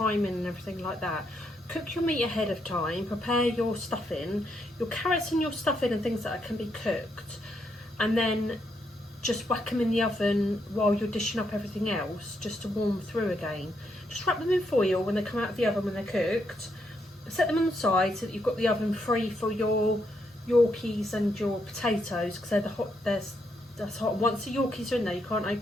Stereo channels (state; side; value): normal; both; correlation 0.78